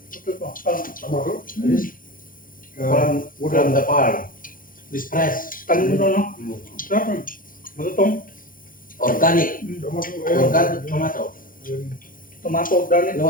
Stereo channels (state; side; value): late; right; 0.40 ms